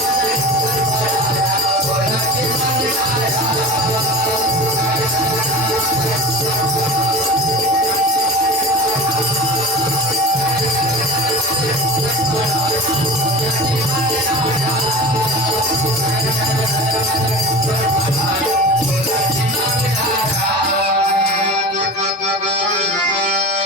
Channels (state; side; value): normal; both; correlation 0.32